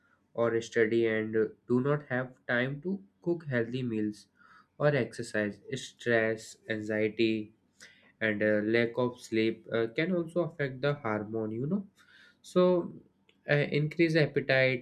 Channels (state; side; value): identical; both; correlation 1.00